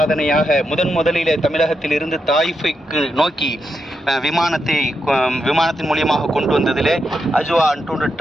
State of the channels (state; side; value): normal; both; correlation 0.84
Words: முதலிலே தமிழகத்தில் இருந்து தாயிஃபுக்கு நோக்கி விமானத்தின் மூலியமாக கொண்டு வந்ததிலே அஜ்வா டூர் அண்ட்